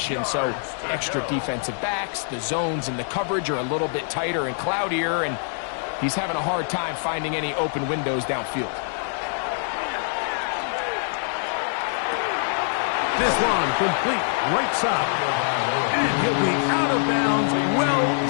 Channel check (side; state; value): right; silent; 62 dB below the other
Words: so extra defensive backs, the zones and the coverage are a little bit tighter and cloudier, and He's having a hard time finding any open windows downfield. This one complete right side. And he'll be out of bounds, well